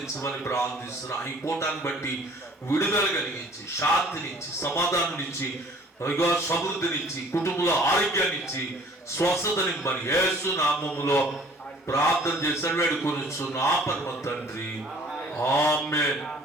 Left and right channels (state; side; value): normal; both; correlation 0.53